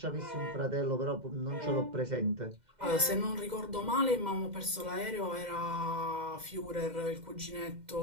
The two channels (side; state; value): left; late; 2.1 ms